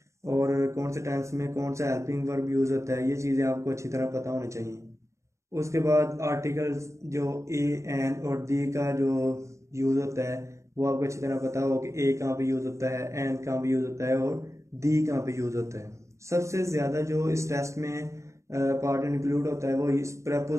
और कौन से टेंस में कौन सा हेल्पिंग वर्ब यूज़ होता है, ये चीज़ें आपको अच्छी तरह पता होनी चाहिए। उसके बाद आर्टिकल्स जो ए एन और दी का जो यूज़ होता है वो आपको अच्छी तरह पता हो कि ए कहाँ पे यूज़ होता है, एन कहाँ पे यूज़ होता है, और दी कहाँ पे यूज़ होता है। सबसे ज़्यादा जो इस टेस्ट में पार्ट इंक्लूड होता है वो इस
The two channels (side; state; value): left; late; 0.14 ms